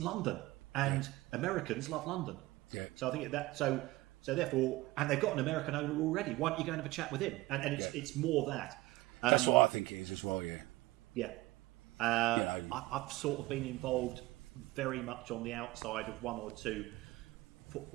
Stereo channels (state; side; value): quieter; left; 19.4 dB